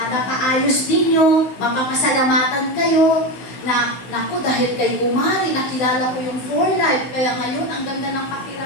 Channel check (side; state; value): right; late; 15 ms